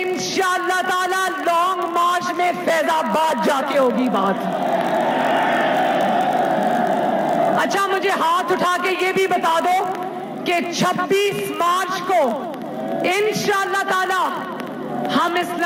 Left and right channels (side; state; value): both; identical; correlation 1.00